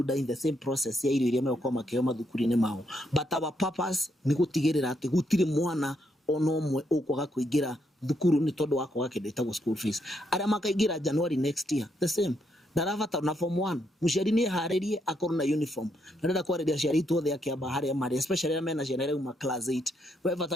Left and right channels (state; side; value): normal; both; correlation 0.77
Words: in the same process ya irio iria meko makeo mathukuru-ini mao but our purpose ni gutigirira ati gutire mwana ono omwe ukwaga kuingira thukuru ni tondu wako gake ndetagwo school fees aria makaingira January next year the same ndaravata na form 1 muciari ni haririe akorwo na uniform ndenda kwariria ciari tuothe akiamba haria mari especially na mena ciana reuma class 8 we